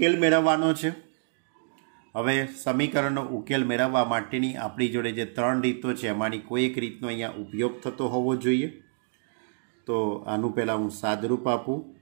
મેળવવાનો છે। હવે સમીકરણનો ઉકેલ મેળવવા માટેની આપણી જોડે જે 3 રીતો છે એમાંની કોઈ એક રીતનો અહીંયા ઉપયોગ થતો હોવો જોઈએ। તો આનું પહેલાં હું સાદરૂપ આપું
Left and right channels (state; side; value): silent; left; digital silence